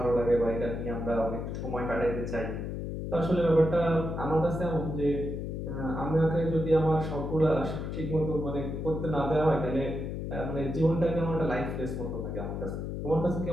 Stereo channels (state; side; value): noise; left; hum, 4 dB below the sound